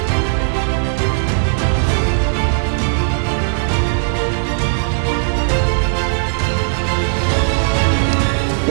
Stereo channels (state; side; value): silent; left; digital silence